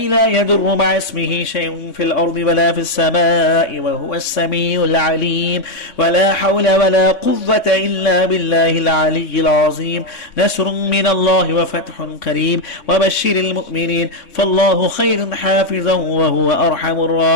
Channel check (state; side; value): late; right; 3.2 ms